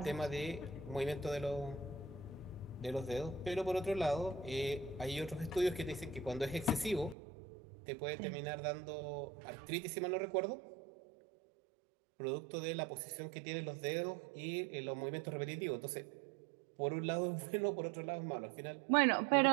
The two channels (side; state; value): left; drops out; at 7.2 s